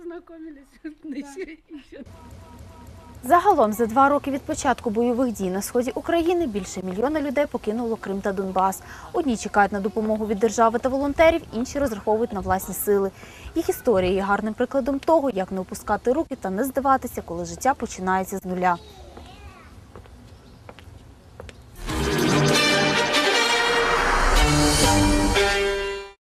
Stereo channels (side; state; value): both; identical; correlation 1.00